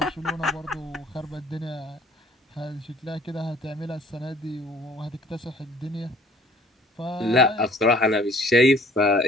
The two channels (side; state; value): both; normal; correlation 0.55